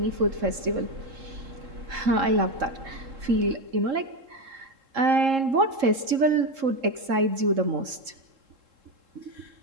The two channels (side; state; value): left; late; 3.7 ms